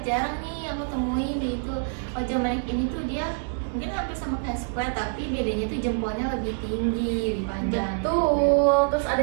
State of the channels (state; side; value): silent; left; 61 dB below the other